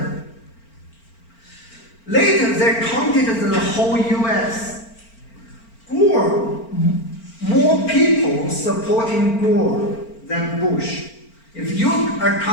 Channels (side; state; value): right; late; 4.4 ms